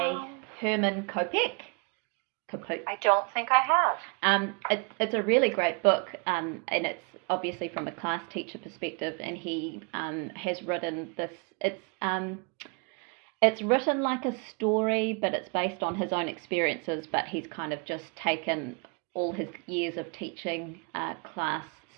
Herman Kopek? I don't think I have. It's a really great book, and it's obviously from a class teacher perspective, and he has written this. It's written like a story, but it's based on his own experiences. But he's kind of just taken all his years of teaching class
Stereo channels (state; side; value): quieter; left; 33.2 dB